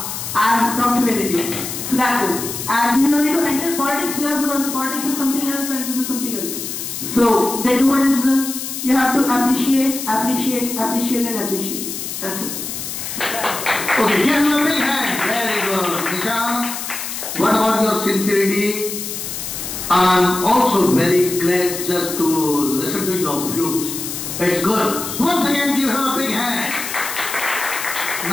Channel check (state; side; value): noise; left; hiss, 6 dB below the sound